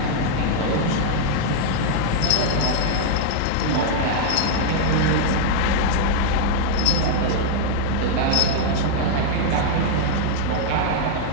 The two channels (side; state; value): both; different; correlation -0.01